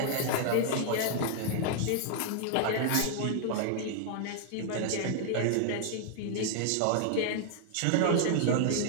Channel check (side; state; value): both; different; correlation -0.01